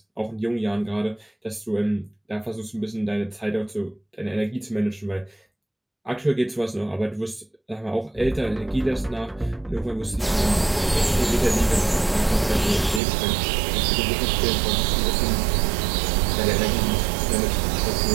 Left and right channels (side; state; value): left; drops out; at 13.0 s